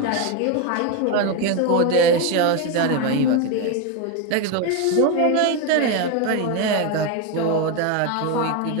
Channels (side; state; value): both; different; correlation 0.02